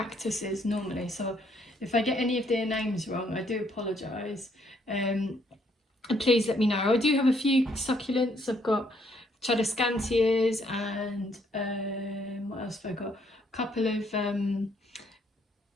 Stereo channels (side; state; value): both; normal; correlation 0.69